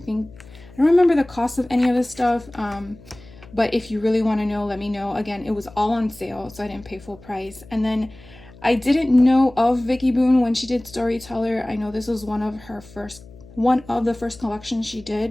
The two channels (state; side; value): noise; left; hum, 21 dB below the sound